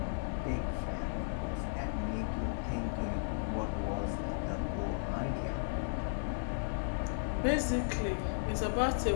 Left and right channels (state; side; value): silent; right; 54 dB below the other